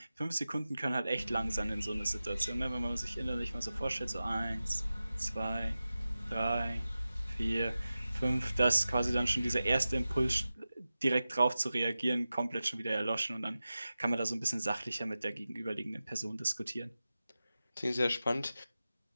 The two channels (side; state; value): both; inverted; correlation -0.94